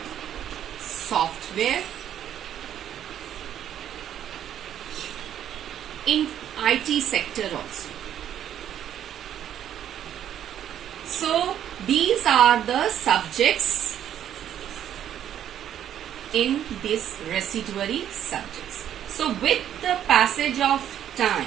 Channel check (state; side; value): quieter; left; 10.4 dB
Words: software, in IT sector also. So these are the subjects in this residuary subjects. So with the passage of